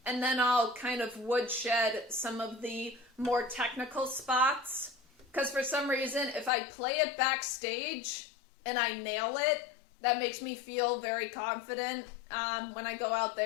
and then I'll kind of woodshed some of the more technical spots. Because for some reason, if I play it backstage and I nail it, that makes me feel very confident when I go out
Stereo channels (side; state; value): right; drops out; at 6.5 s